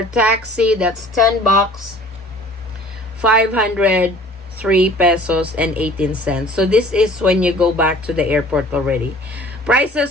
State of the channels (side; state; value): both; normal; correlation 0.49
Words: taxi, that's 10 bucks, 503 pesos and 18 cents. So this is when you go back to the airport already.